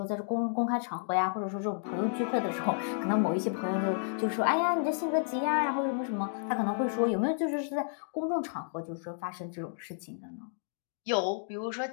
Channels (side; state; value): right; silent; digital silence